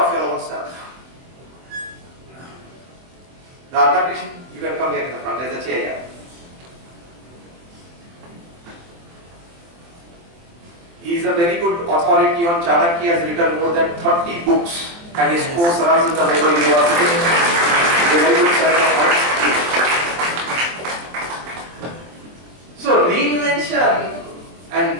your own self? Radha Krishna, you can come here in the front, there's a chair here. He is a very good authority on Chanakya. He has written more than 30 books and his course runs in the Labour University. He's a very good friend of mine. So reinvention, and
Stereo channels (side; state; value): left; late; 24 ms